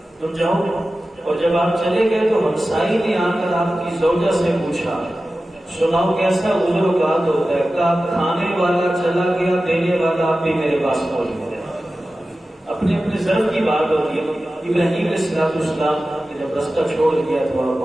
تم جاؤ۔ اور جب آپ چلے گئے تو ہمسائی نے آ کر آپ کی زوجہ سے پوچھا، سناؤ کیسا عذر و قات ہوتا ہے؟ کہا کھانے والا چلا گیا، دینے والا آپ بھی میرے پاس پہنچ گیا۔ اپنے اپنے ضرب کی بات ہوتی ہے۔ ابراہیم علیہ السلام نے جب رستہ چھوڑ دیا تو آپ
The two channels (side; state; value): both; normal; correlation 0.95